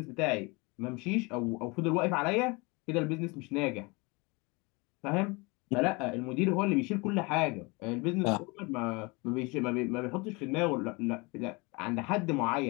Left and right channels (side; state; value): right; quieter; 27.1 dB